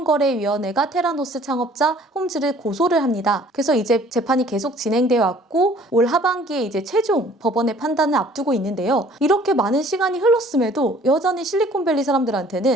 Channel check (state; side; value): normal; both; correlation 0.54